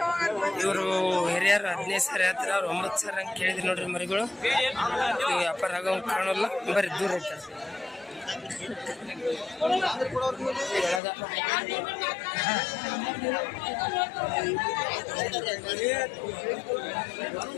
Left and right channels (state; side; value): drops out; right; at 11.0 s